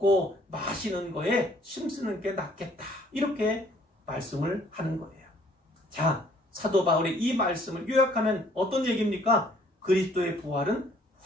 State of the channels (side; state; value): both; normal; correlation 0.60